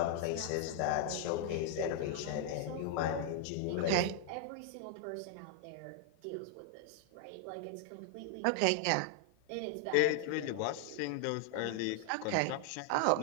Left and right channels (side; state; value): both; different; correlation 0.00